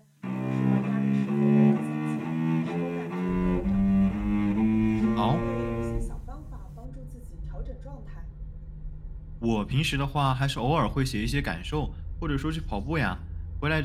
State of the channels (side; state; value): both; identical; correlation 1.00